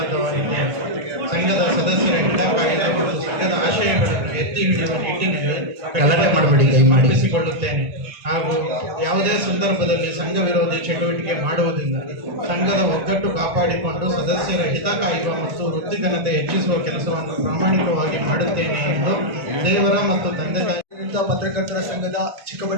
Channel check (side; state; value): left; late; 1.9 ms